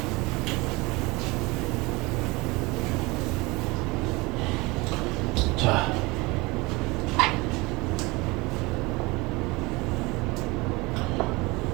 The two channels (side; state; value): left; quieter; 23.9 dB